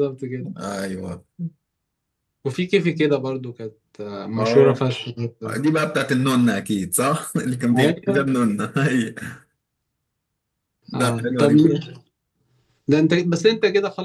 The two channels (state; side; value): identical; both; correlation 1.00